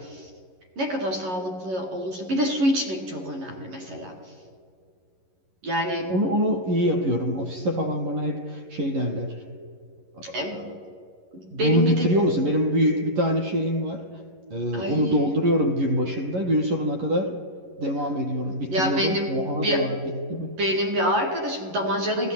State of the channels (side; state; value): left; late; 11 ms